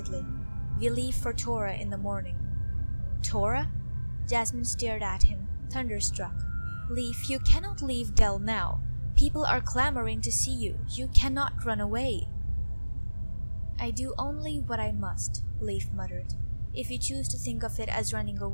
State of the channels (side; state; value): both; inverted; correlation -1.00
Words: "We leave for Tora in the morning." "Tora?" Jasmine stared at him, thunderstruck. "Lief, you cannot leave Del now. People are clamoring to see you. You cannot run away." "I do only what I must," Lief muttered. "If you choose to think of it as running